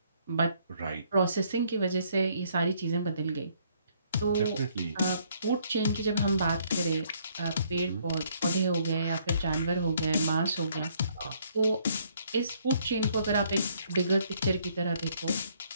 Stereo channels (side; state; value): both; inverted; correlation -0.66